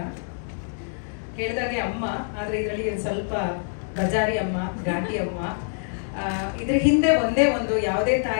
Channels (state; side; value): silent; right; digital silence